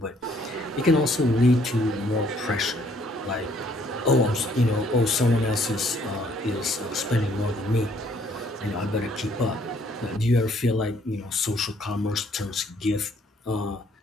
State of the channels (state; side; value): normal; both; correlation 0.65